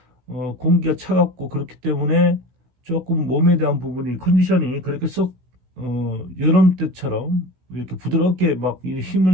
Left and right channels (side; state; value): left; late; 16 ms